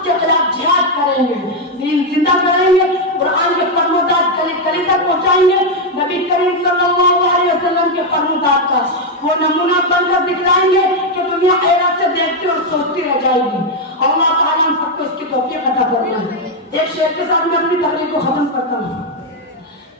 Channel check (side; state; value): both; normal; correlation 0.03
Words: खिलाफ जिहाद करेंगे, दीन जिंदा करेंगे, कुरान के फरमादात गली गली तक पहुंचाएंगे, नबी करीम सल्लल्लाहु अलैहि वसल्लम के फरमादात का वो नमूना बनकर दिखलाएंगे कि दुनिया हैरत से देखती और सोचती रह जाएगी। अल्लाह ताला हम सबको इसकी तौफीक अता फरमाए। एक शेर के साथ मैं अपनी तकरीर को खत्म करता हूँ।